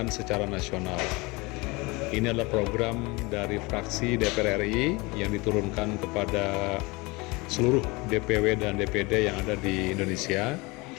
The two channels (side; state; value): right; quieter; 24.9 dB